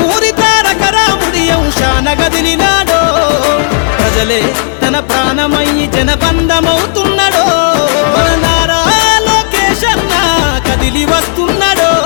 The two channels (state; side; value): silent; right; digital silence